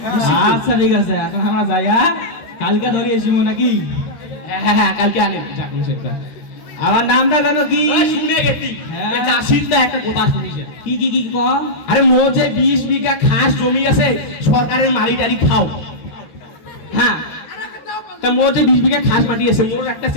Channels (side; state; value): right; late; 13 ms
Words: আচ্ছা ঠিক আছে এখন আমরা যাই হ্যাঁ কালকে ধরে এসিমু নাকি হ্যাঁ কালকে আনে যাক সেটা আমার নামটা কেন কি শুনে গেছি হ্যাঁ। চাষির তো একটা কথা শুনিছে কি কম আরে মো যে 20 বিঘা খাস জমি আছে সরকারের মারি টারি খাও হ্যাঁ তা মো যে 20 বিঘা খাস মাটি আছে মোর একটা